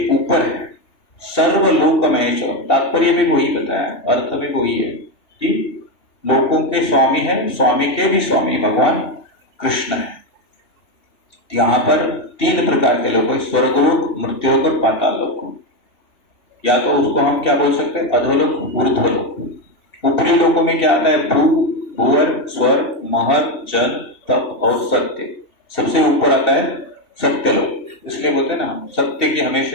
ऊपर है। सर्वलोक महेश्वर, तात्पर्य भी वही बताया, अर्थ भी वही है कि लोकों के स्वामी है, स्वामी के भी स्वामी भगवान कृष्ण है। यहां पर 3 प्रकार के लोग हैं, स्वर्गलोक, मृत्युलोक और पाताल लोक। या तो उसको हम क्या बोल सकते हैं? अधोलोक, ऊर्ध्वलोक। ऊपरी लोकों में क्या आता है? भू, भुवन, स्वर्ग, महत, जन, तप और सत्य। सबसे ऊपर आता है सत्यलोक। इसलिए बोलते हैं ना सत्य की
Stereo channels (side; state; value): right; late; 2.7 ms